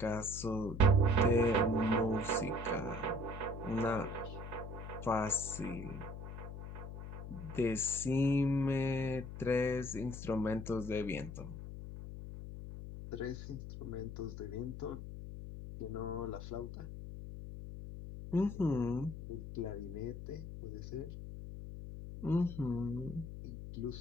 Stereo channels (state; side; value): noise; left; hum, 9 dB below the sound